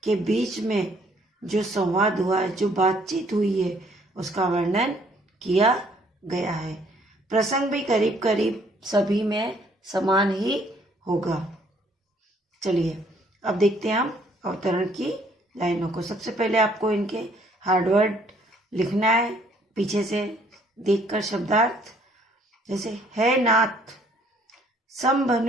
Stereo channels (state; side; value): normal; both; correlation 0.63